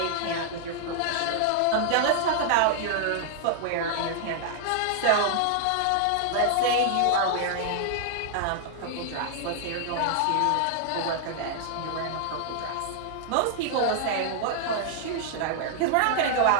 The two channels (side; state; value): both; different; correlation -0.01